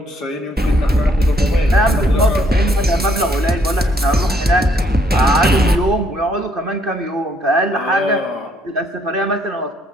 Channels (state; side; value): normal; both; correlation 0.68